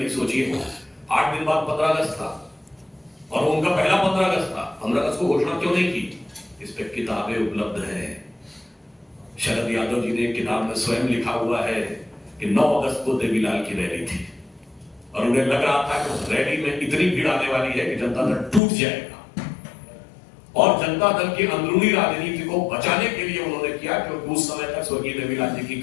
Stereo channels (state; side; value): drops out; right; at 18.6 s